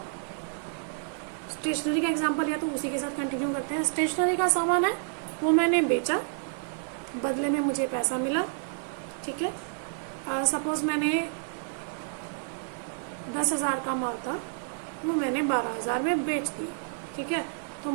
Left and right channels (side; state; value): left; silent; 58 dB below the other